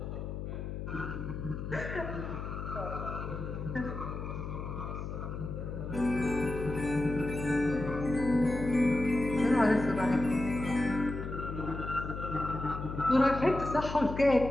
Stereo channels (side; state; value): left; noise; hum, 6 dB below the sound